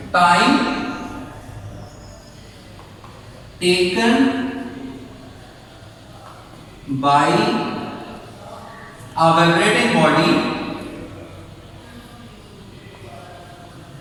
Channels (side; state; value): both; identical; correlation 1.00